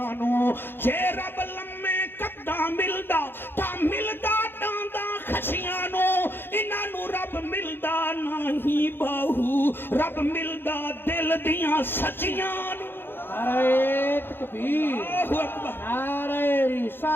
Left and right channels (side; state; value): right; late; 0.10 ms